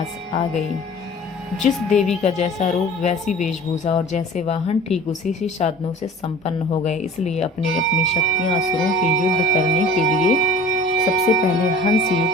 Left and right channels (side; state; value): both; normal; correlation 0.43